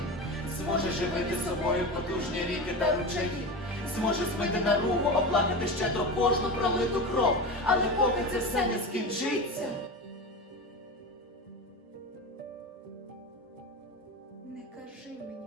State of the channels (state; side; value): normal; both; correlation 0.25